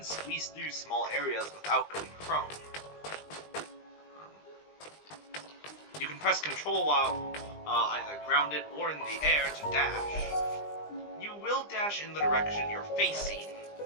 squeeze through small areas without going prone. You can press control while either grounded or in the air to dash. You will dash in the direction you're facing.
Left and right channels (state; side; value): late; right; 20 ms